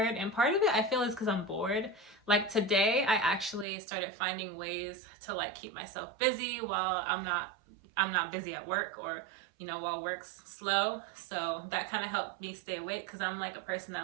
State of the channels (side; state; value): left; drops out; at 3.7 s